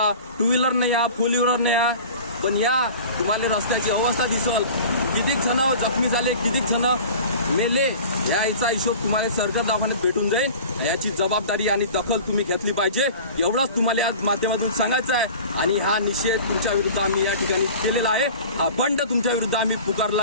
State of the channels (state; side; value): inverted; both; correlation -0.40